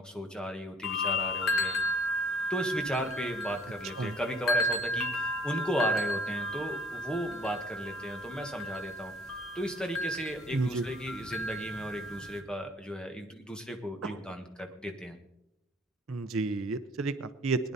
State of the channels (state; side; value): normal; both; correlation 0.55